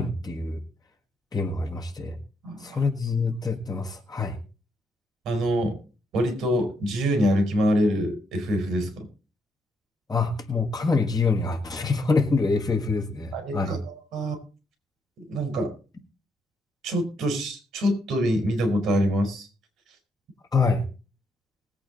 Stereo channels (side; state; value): both; normal; correlation 0.77